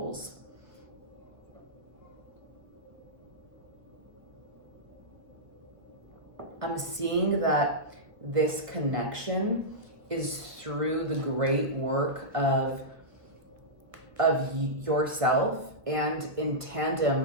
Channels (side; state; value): left; late; 1.2 ms